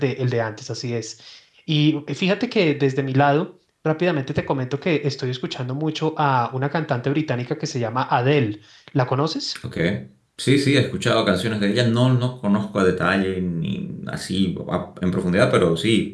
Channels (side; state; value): both; identical; correlation 1.00